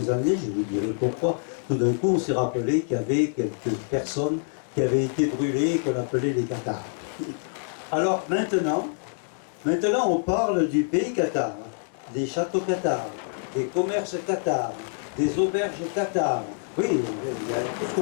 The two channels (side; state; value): right; silent; digital silence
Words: années, je vous dirai pourquoi, tout d'un coup, on s'est rappelé qu'il y avait quelques personnes qui avaient été brûlées et qu'on appelait les Cathares. Alors maintenant, on parle du pays cathare, des châteaux cathares, des commerces cathares, des auberges cathares. Oui, il y a tout ce